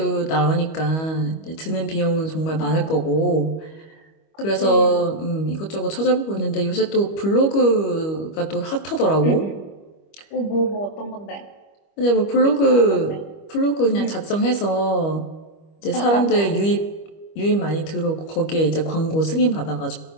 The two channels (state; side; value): late; right; 25 ms